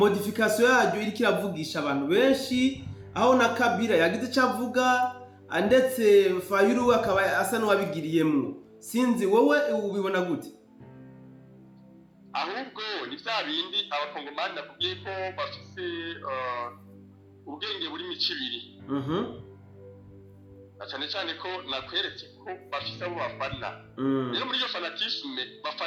yaryo iri kiravugisha abantu benshi aho na Kabila yagize cyavuga ndetse Fayulu akaba asa n'uwabigiriyemo. Sinzi wowe ubibona gute? Ahubwo ni bya bindi abakongomani nakubwiye ko bafise ubwenge buri micibiri. Cyane cyane ko nakweretse ko bafise abo bafana. Rero muri iyo fanatisme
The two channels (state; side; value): identical; both; correlation 1.00